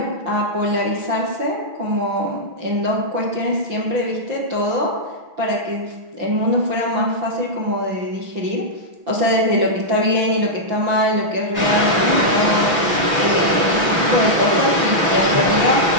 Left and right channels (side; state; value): left; late; 6.0 ms